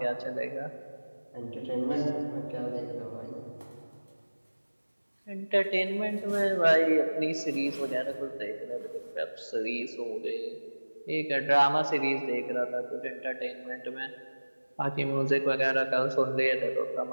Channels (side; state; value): both; inverted; correlation -1.00